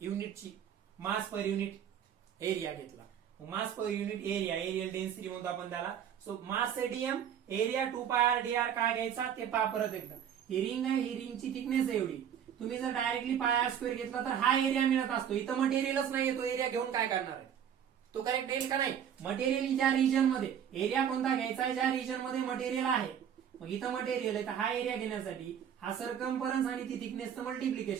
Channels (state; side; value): quieter; left; 9.0 dB